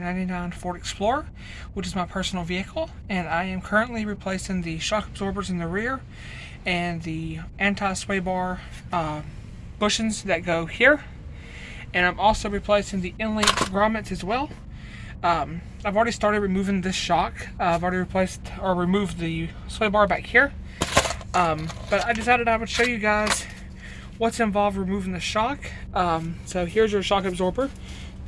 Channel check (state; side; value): identical; both; correlation 1.00